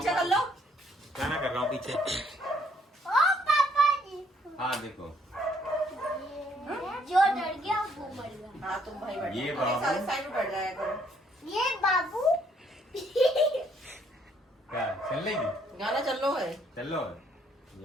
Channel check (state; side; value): normal; both; correlation 0.67